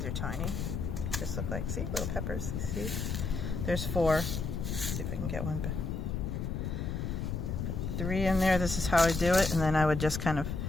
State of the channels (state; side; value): noise; left; rumble, 3 dB below the sound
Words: are tiny, just look like, see, little peppers, see? There's 4. Let's see if I can get one. Put 3 in there. This is how I do it, and then I would just kind of